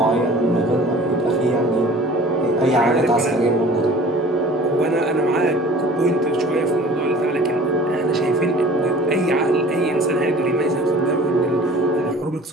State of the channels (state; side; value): normal; both; correlation 0.46